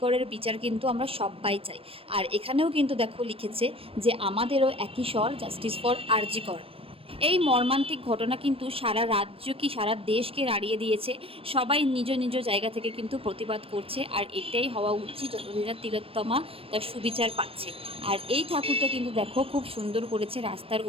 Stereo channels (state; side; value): late; left; 0.27 ms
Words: করের বিচার কিন্তু আমরা সবাই চাই। আর এখানেও কিন্তু দেখো লিখেছে যে আমাদেরও একই স্বর, জাস্টিস ফর আরজি কর। এই মর্মান্তিক ঘটনা কিন্তু সারা রাজ্য কি সারা দেশকে নাড়িয়ে দিয়েছে। সবাই নিজ নিজ জায়গা থেকে কিন্তু প্রতিবাদ করছে, আর এটাই হওয়া উচিত যতদিন না তিলোত্তমা তার সুবিচার পাচ্ছে। আর এই ঠাকুরটা কিন্তু দেখো খুব সুন্দর করেছে রাস্তার